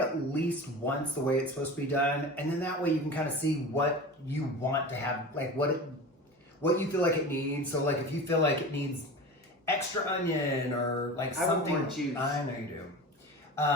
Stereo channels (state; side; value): normal; both; correlation 0.32